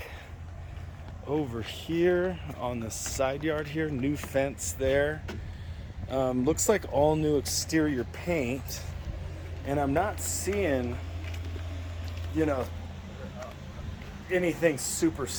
over here on the side yard here. New fence there. Looks like all new exterior paint, and I'm not seeing, anything super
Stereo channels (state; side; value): identical; both; correlation 1.00